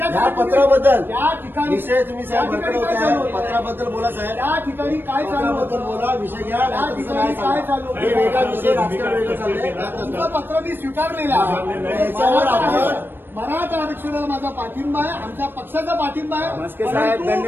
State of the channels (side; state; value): left; late; 0.097 ms